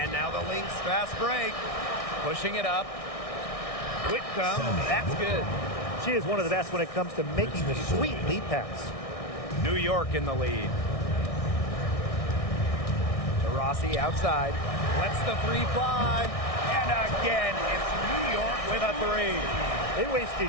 now the Lynx fast break. Pushing it up. Whitcomb, that's good. She is one of the best when it comes to making the sweet lead pass. New York in the lead. Taurasi outside. Lets the 3 fly. And again, it's New York with a 3. They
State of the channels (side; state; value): right; late; 1.6 ms